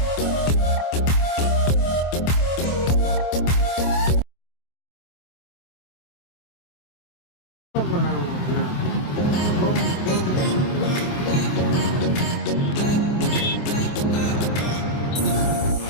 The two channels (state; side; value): late; right; 25 ms